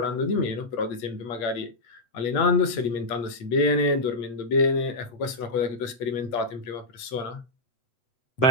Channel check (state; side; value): late; right; 8.1 ms